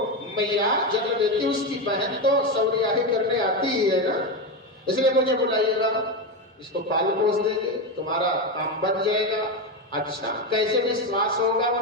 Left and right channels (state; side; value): normal; both; correlation 0.13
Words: मैया जन्म देती उसकी बहन तो सौरियाही करने आती ही है ना, इसलिए मुझे बुलाइएगा, इसको पाल पोस देंगे, तुम्हारा काम बन जाएगा। अच्छा, कैसे विश्वास होगा